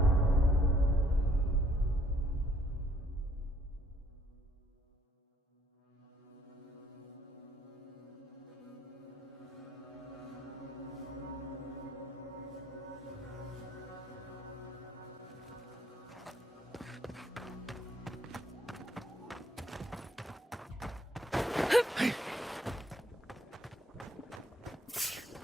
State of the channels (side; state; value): both; normal; correlation 0.66